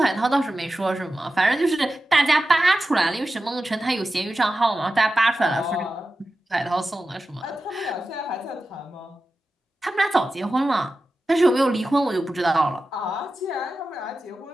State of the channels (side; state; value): both; normal; correlation 0.93